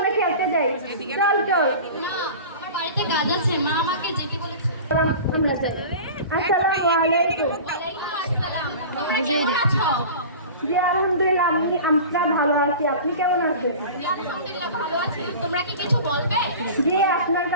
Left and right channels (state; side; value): inverted; both; correlation -0.37